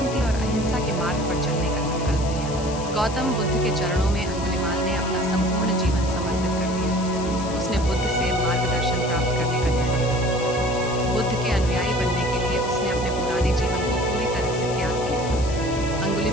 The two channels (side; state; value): left; noise; hiss, 14 dB below the sound